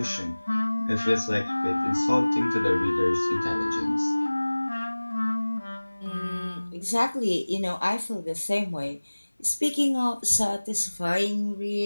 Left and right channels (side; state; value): both; inverted; correlation -1.00